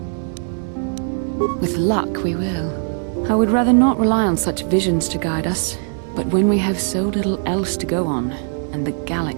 With luck, we will. I would rather not rely on such visions to guide us, but when we have so little else to go on, and the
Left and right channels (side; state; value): left; silent; digital silence